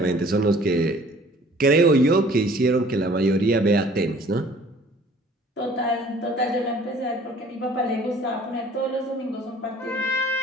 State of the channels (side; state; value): both; normal; correlation 0.53